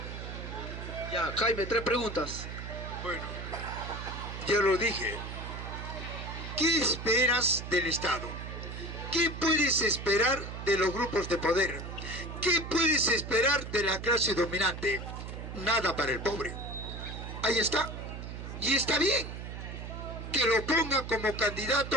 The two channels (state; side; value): noise; right; hum, 8 dB below the sound